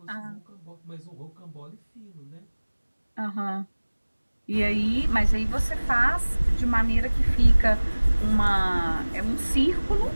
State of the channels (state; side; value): inverted; both; correlation -1.00